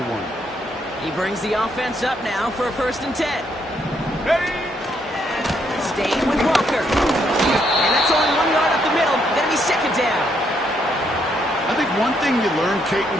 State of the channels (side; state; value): both; normal; correlation 0.74